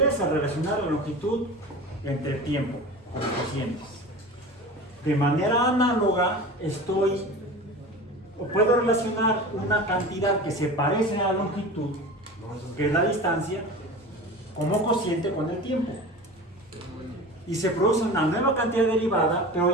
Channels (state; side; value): normal; both; correlation 0.34